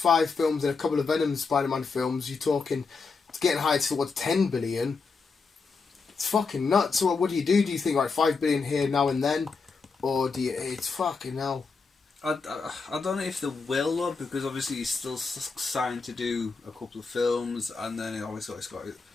films and a couple of Venom Spider-Man films, you're talking, it's getting high towards 10 billion. It's fucking nuts. So what do you do? Do you think like 5 billion here now and then, or do you? It's fucking hell. I don't know if they will though, because obviously he's still signed to do a couple of films, and then he's got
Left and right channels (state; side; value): quieter; right; 4.7 dB